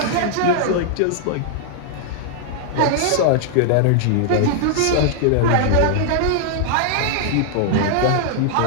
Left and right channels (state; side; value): different; both; correlation -0.01